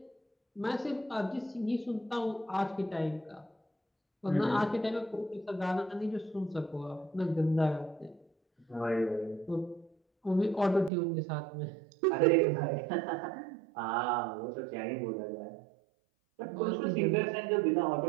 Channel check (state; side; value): drops out; left; at 10.9 s